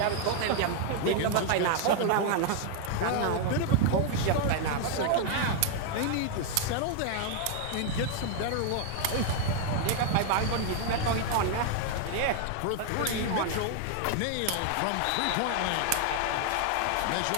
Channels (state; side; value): different; both; correlation 0.00